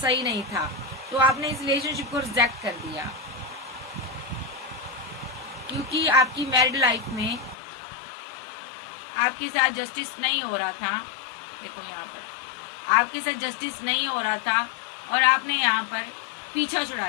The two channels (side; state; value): right; drops out; at 7.6 s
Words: नहीं था, तो आपने इस रिलेशनशिप को रिजेक्ट कर दिया। क्योंकि आपकी मैरिड लाइफ में आपके साथ जस्टिस नहीं हो रहा था, देखो यहाँ पर आपके साथ जस्टिस नहीं हो रहा था, और आपने यहाँ पर पीछा छुड़ा